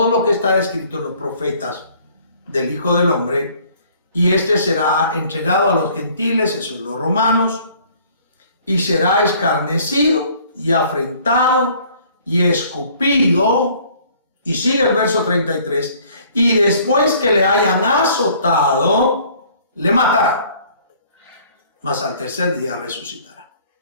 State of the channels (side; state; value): both; inverted; correlation -0.56